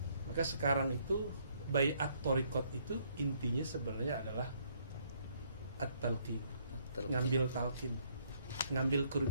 Maka sekarang itu bai'at thariqat itu intinya sebenarnya adalah at-talqin. Ngambil talqin, ngambil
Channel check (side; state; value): both; inverted; correlation -0.64